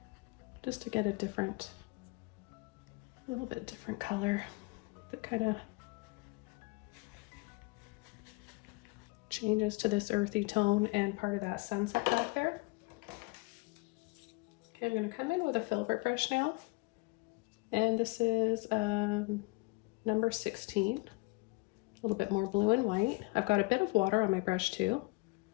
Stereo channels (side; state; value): right; quieter; 26.4 dB